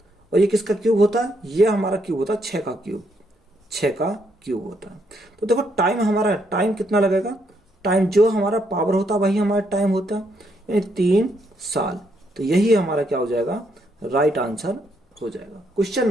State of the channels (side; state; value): both; normal; correlation 0.75